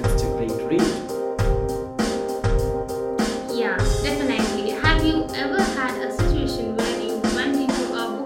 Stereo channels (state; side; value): identical; both; correlation 1.00